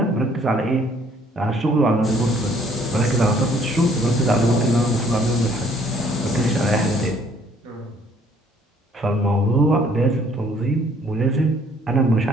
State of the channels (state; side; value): normal; both; correlation 0.61